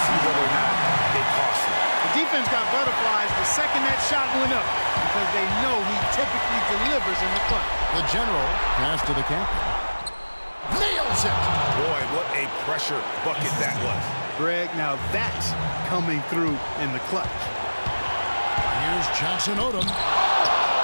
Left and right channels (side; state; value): both; inverted; correlation -1.00